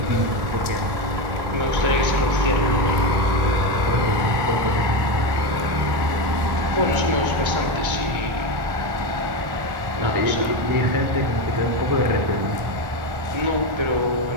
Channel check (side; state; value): left; late; 1.1 ms